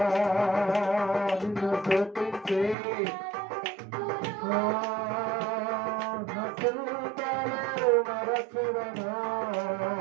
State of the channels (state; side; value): drops out; left; at 2.8 s